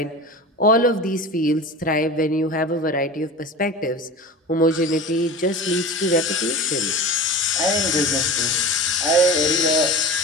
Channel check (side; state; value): both; normal; correlation 0.33